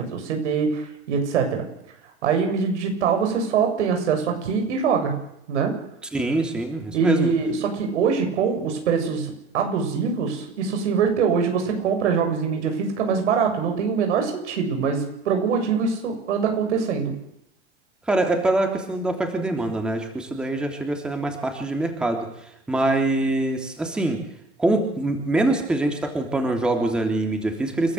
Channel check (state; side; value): quieter; left; 4.0 dB